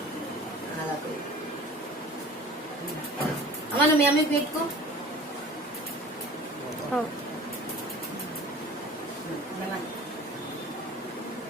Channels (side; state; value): both; normal; correlation 0.43